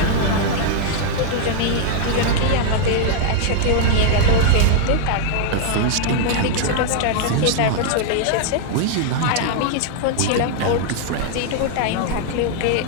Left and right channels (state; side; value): different; both; correlation -0.01